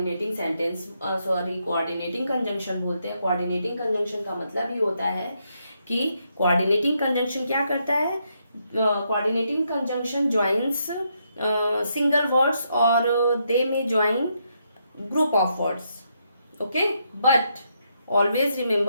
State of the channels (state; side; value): inverted; both; correlation -0.78